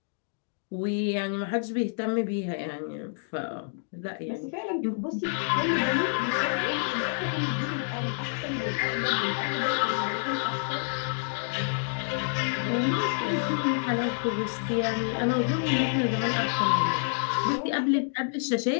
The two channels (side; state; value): right; silent; digital silence